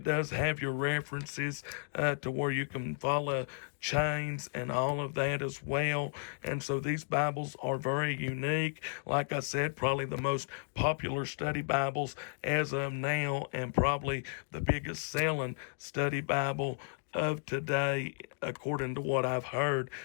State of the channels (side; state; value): right; silent; digital silence